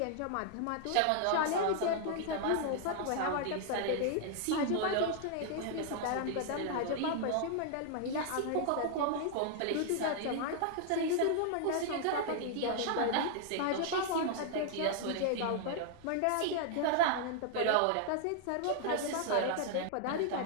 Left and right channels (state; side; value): different; both; correlation -0.01